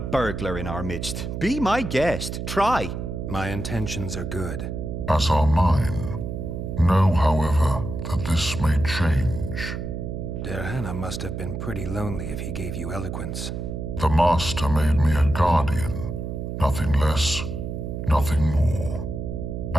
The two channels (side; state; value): right; noise; hum, 5 dB below the sound